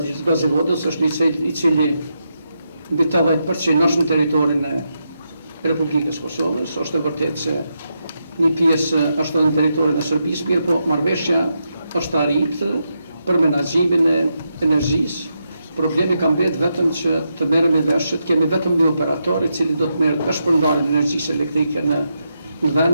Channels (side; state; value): both; inverted; correlation -0.84